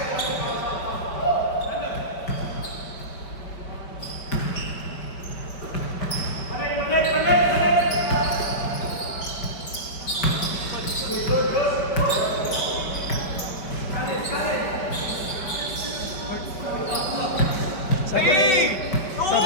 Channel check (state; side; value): late; right; 5.5 ms